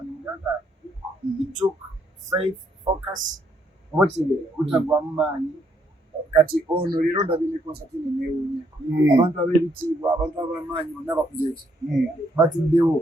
muganda it took faith focus oba kitegeera butagwamu maanyi kati ono leero ndabye ne konsati eno neewuunya abantu ab'ebitiibwa abantu ab'amaanyi bonna bakuze eki batuddewo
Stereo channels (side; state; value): both; normal; correlation 0.72